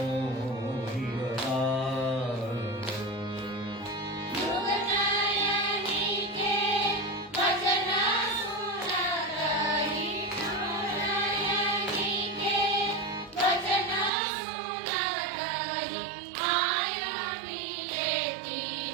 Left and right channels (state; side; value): drops out; left; at 14.1 s